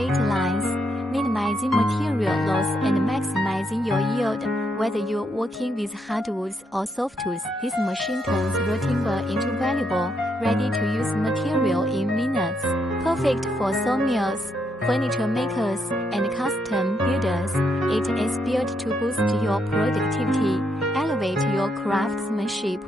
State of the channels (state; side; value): normal; both; correlation 0.77